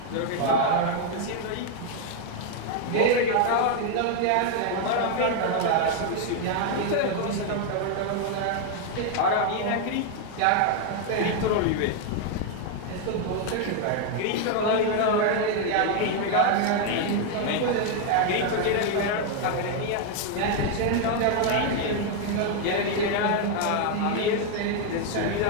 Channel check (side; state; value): both; different; correlation 0.01